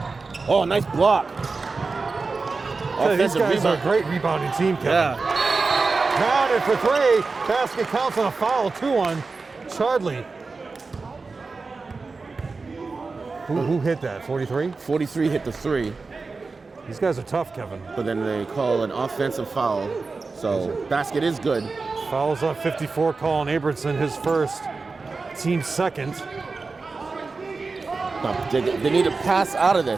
Oh, nice block. These guys are a great rebounding team, Kevin. Yeah. Counted for 3. Basket counts on a foul, 2 on Chardley. Who hit that, 43? 43 hit the 3. These guys are tough, Kevin. But then they call an offensive foul. So basket is good. Fouls on 54, Colin Abramson, his first, team second. They need to pass out of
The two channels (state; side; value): quieter; left; 4.1 dB